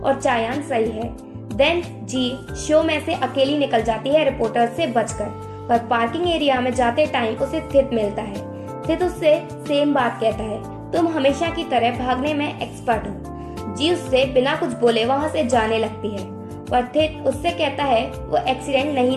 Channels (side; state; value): both; identical; correlation 1.00